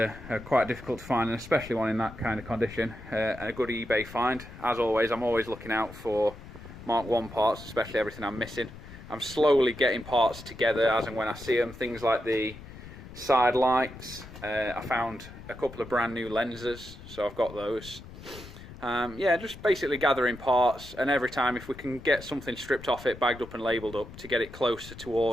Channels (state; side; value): noise; left; rumble, 15 dB below the sound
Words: are quite difficult to find, and especially one in that kind of condition. A good eBay find. As always, I'm always looking out for Mk1 parts, especially everything I'm missing. I'm slowly getting parts together as and when I see them. Things like the side lights. I found a couple of brand new lenses, so I've got those. Yeah, just basically gathering parts, and every time if we can get something stripped off it, bagged up and labelled up to get it closer